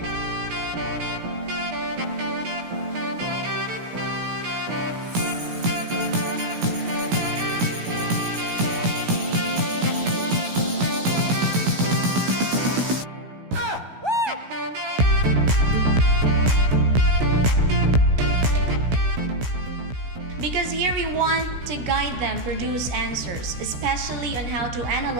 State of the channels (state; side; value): late; left; 16 ms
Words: Because here we want to guide them produce answers, especially on how to